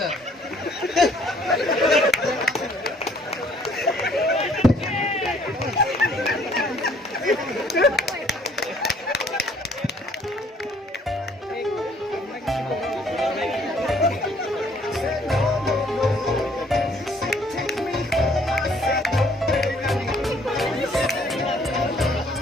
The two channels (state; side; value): normal; both; correlation 0.61